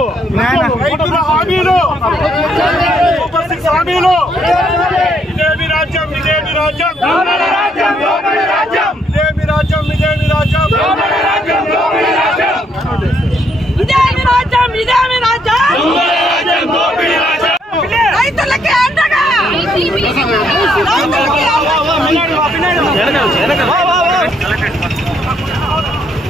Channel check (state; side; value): normal; both; correlation 0.71